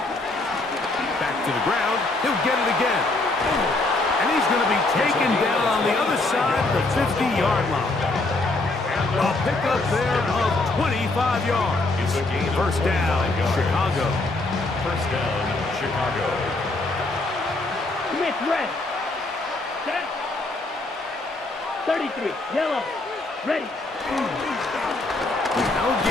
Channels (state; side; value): quieter; right; 3.0 dB